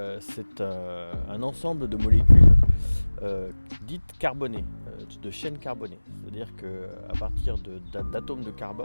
c'est un ensemble de molécules dites carbonées, de chaînes carbonées. C'est-à-dire qu'à partir d'atomes de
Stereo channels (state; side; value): inverted; both; correlation -1.00